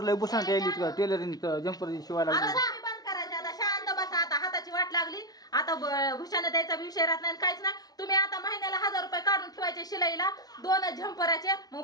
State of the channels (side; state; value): right; late; 0.19 ms